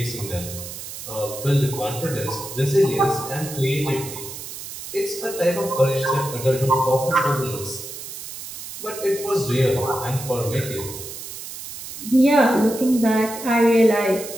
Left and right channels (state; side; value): noise; right; hiss, 10 dB below the sound